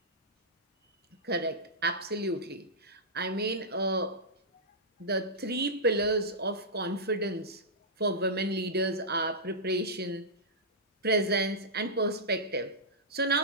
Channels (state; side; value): normal; both; correlation -0.13